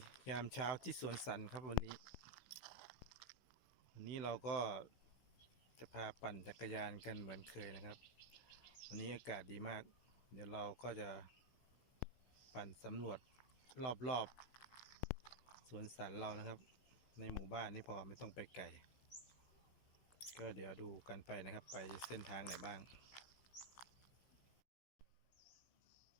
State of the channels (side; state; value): right; late; 16 ms